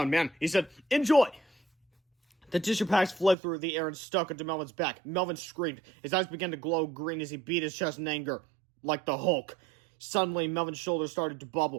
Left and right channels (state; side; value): drops out; left; at 3.4 s